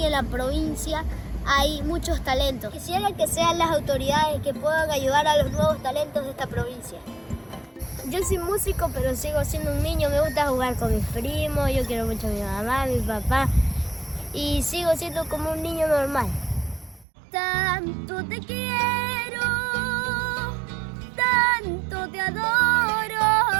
en la provincia hay muchos talentos. Quisiera que sean las autoridades que puedan ayudar a los nuevos talentos de esta provincia. Yo soy músico, pero sigo siendo un niño. Me gusta jugar con mis primos, yo quiero mucho a mi mamá, a mi papá y sigo siendo como un niño normal. Tanto te quiero, tanto te adoro,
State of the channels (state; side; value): drops out; left; at 17.1 s